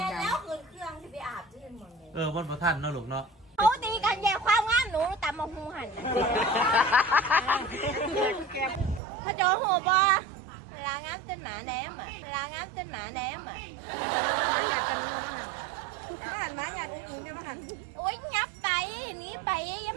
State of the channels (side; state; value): left; drops out; at 9.0 s